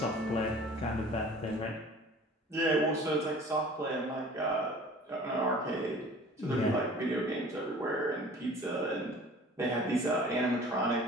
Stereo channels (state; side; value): normal; both; correlation 0.45